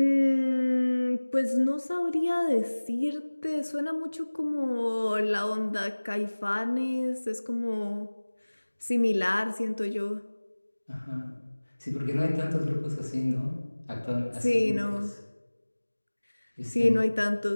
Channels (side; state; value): both; inverted; correlation -1.00